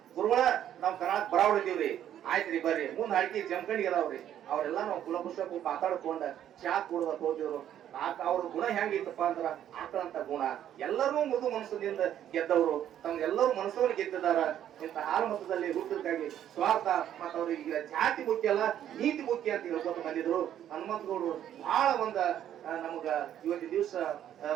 ಗುರುಗಳ ನಾವು ಕರ್ನಾಟಕ ಬರಾವಳಿದೀವ್ರಿ, ಆಯ್ತ್ರಿ ಬರ್ರಿ, ಮುಂದ್ ಹಾಕಿ ಜಮಖಂಡಿಗೆ ಅದಾವ್ರಿ. ಅವರೆಲ್ಲ ನಾವು ಕುಲಪುರುಷ ಮಾತಾಡ್ಕೊಂಡ ಚಾ ಕುಡ್ದ ಹೋಗ್ತಿದ್ರು. ಅವ್ರ ಗುಣ ಹೆಂಗಿತ್ತಪ್ಪ ಅಂದ್ರ ಆಕಳಂತ ಗುಣ. ಎಲ್ಲರೂ ಮೃದು ಮನಸ್ಸಿನಿಂದ ಗೆದ್ದವರು, ತಮ್ಗೆಲ್ಲರೂ ಮನಸ್ಸನ್ನು ಗೆದ್ದಿದಾರ. ಇಂಥ ಹಾಲು ಮತದಲ್ಲಿ ಹುಟ್ಟಿದಕ್ಕಾಗಿ ಸ್ವಾರ್ಥ ಮತ್ತ ಅವ್ರಿಗೆ ಜಾತಿ ಮುಖ್ಯ ಅಲ್ಲ, ನೀತಿ ಮುಖ್ಯ ಅಂತ ಹೇಳ್ಕೊತ ಬಂದಿದ್ರು. ಹನುಮಂತಗೌಡರು ಬಹಳ ನಮಗ ಇವತ್ತಿನ ದಿವಸ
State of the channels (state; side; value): quieter; left; 10.7 dB